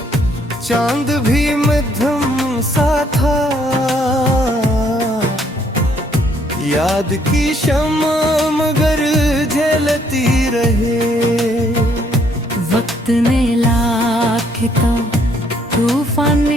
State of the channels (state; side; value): normal; both; correlation 0.67